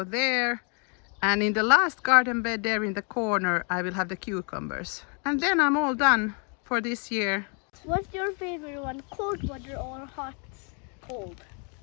there, and in the last garden bed there in the corner I will have the cucumbers. And then I'm all done for this year. What's your favorite one, cold water or hot? Cold.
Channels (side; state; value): right; quieter; 37.7 dB